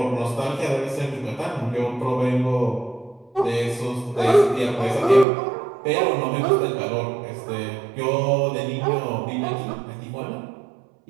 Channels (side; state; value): left; drops out; at 5.2 s